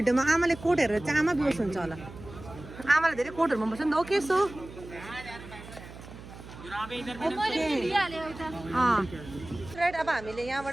आमाले कोट हेरेर चाहिँ आमा बेहोस हुन्छ होला आमालाई धेरै कोटहरू मन पर्छ नि त ओके सो राइट अब हामीले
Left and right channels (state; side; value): noise; right; hum, 15 dB below the sound